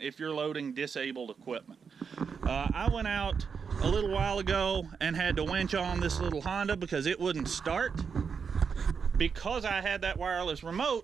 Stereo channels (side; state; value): left; quieter; 6.1 dB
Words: if you're loading disabled equipment. I went out a little while ago and had to winch on this little Honda because it wouldn't start. Because I had that wireless